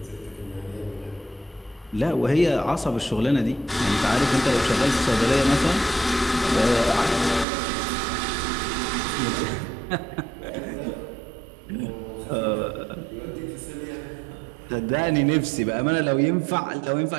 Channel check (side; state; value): left; drops out; at 7.5 s